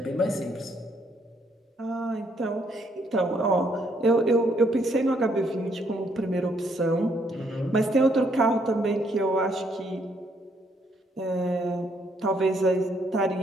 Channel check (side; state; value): both; normal; correlation 0.71